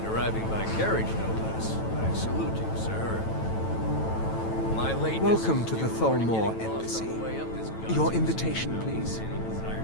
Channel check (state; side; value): late; right; 9.1 ms